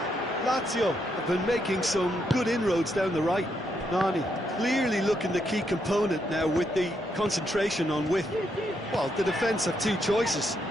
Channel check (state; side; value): normal; both; correlation 0.78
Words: Lazio have been making some good inroads down the right. Nani clearly looking the key component now with the concentration on width. Well, the defence have two choices: